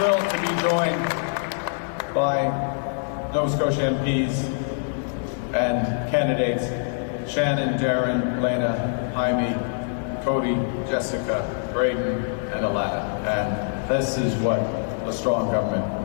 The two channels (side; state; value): right; silent; digital silence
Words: to be joined by Nova Scotia MPs and candidates Shannon, Darren, Lena, Jaime, Cody, Jessica, Braden, and Alana. And this is what a strong government